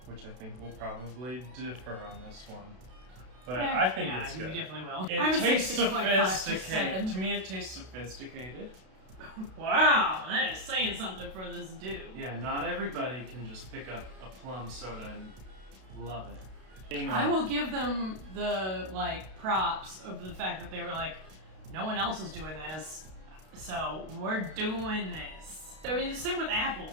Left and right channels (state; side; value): late; left; 32 ms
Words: which I think will probably differ on this one. But I think yeah, it's you good. definitely will. It I would say tastes 6.5 to sophisticated. 7. To me, it tastes sophisticated. Wow, that is saying something for this dude. Yeah, not everybody can just pick up a plum soda and love it. You know, I will give them the like props of the fact that they were like, no one else is doing this, so we're doing this. I mean, the same with Apple.